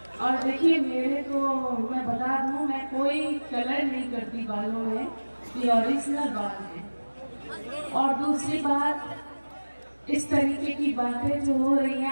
और देखिए, मेरे को मैं बता दूं, मैं कोई कलर नहीं करती बालों में, ये ओरिजिनल बाल है। और दूसरी बात, इस तरीके की बातें जो हो रही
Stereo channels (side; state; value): both; inverted; correlation -1.00